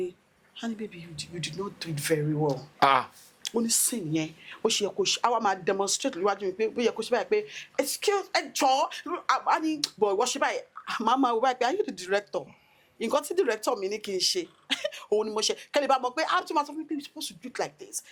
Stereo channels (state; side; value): identical; both; correlation 1.00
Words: Honey baby, you did not do it very well. Ó ní scene yẹn ó ṣe yẹ kó ṣe àwa máa demonstrate níwájú mi pé ó yẹ kó ṣe báyìí pé excuse a ní boy wọ́n ṣe báyìí màmá wọ báyìí pé are you the director? Nǹkan tí director mi ní kí n ṣe òun ni mo ṣe kẹ́lẹ́ bá mọ̀ pé how to matter you're supposed to do it like this,